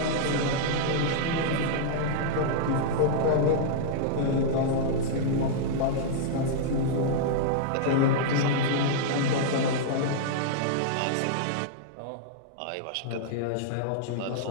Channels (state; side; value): different; both; correlation -0.01